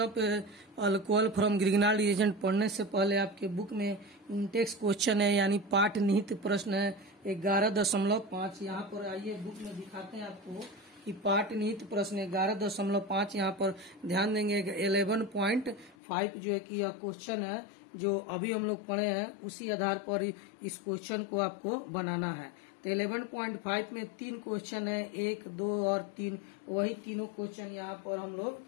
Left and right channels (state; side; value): drops out; right; at 16.0 s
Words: alcohol from Grignard reagent पढ़ने से पहले आपके बुक में इंटेक्स क्वेश्चन है, यानी पाठ निहित प्रश्न है 11.5। यहाँ पर आइए बुक में दिखाते हैं आपको कि पाठ निहित प्रश्न 11.5। यहाँ पर ध्यान देंगे 11.5 जो है कि यह क्वेश्चन है जो अभी हम लोग पढ़े हैं, उसी आधार पर इस क्वेश्चन को आपको बनाना है। तो 11.5 में 3 क्वेश्चन है, 1, 2 और 3। वही तीनों क्वेश्चन यहाँ पर हम लोग